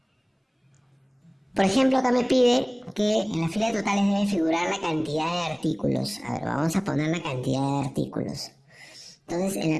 Por ejemplo, acá me pide que en la fila de totales debe figurar la cantidad de artículos. A ver, vamos a poner la cantidad de artículos. Entonces, en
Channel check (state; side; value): identical; both; correlation 1.00